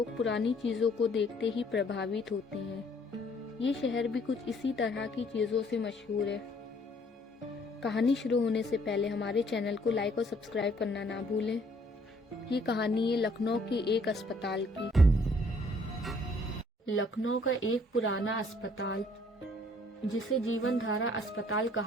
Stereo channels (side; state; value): both; normal; correlation 0.62